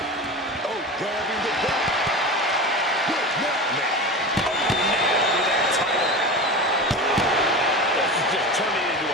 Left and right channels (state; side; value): normal; both; correlation 0.28